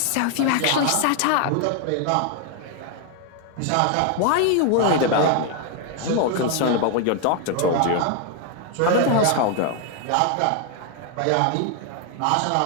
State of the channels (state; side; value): different; both; correlation 0.01